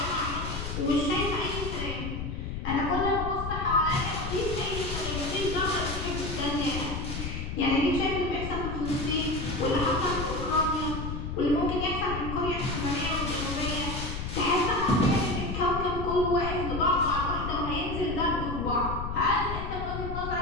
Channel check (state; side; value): noise; left; rumble, 5 dB below the sound